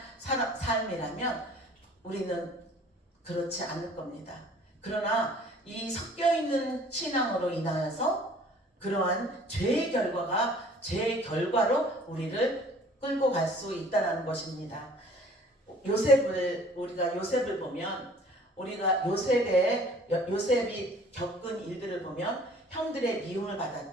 삶이라면 우리는 그렇지 않을 겁니다. 그러나 이 섞여있는 신앙으로 인하여서 그러한 죄의 결과로 우리를 끌고 갈 수 있다는 것입니다. 우리가 요셉을 보면 요셉이 겪은 일들을 보면 형들의 미움을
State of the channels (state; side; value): normal; both; correlation 0.52